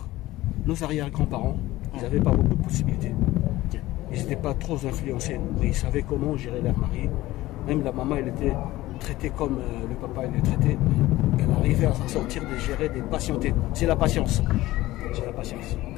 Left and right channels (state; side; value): quieter; right; 17.1 dB